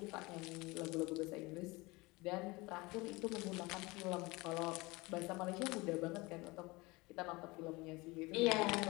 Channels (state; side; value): quieter; right; 23.6 dB